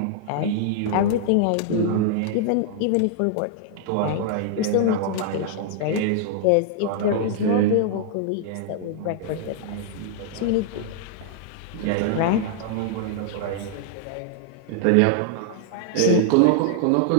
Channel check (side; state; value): both; different; correlation -0.01